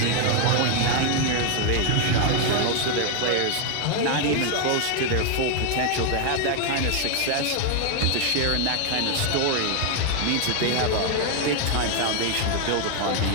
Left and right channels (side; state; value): both; different; correlation 0.00